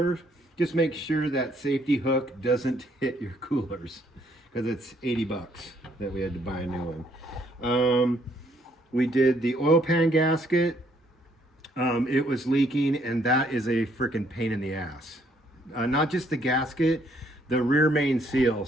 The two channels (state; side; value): normal; both; correlation 0.68